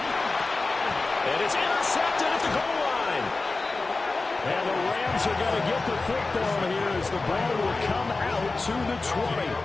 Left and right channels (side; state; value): right; quieter; 3.5 dB